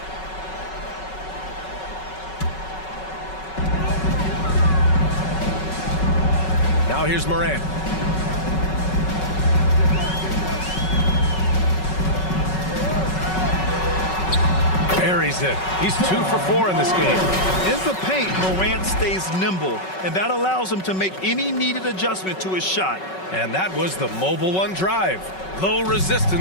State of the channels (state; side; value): late; right; 5.3 ms